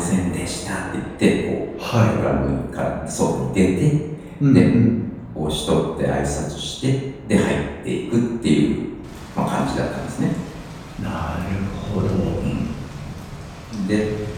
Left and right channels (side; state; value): both; identical; correlation 1.00